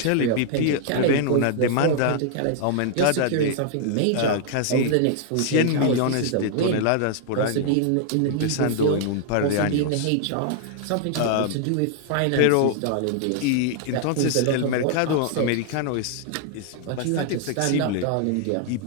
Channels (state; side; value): different; both; correlation 0.00